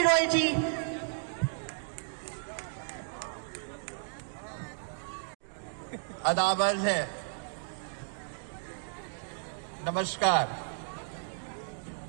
रॉय जी। अदाबर है, नमस्कार।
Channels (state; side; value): silent; left; digital silence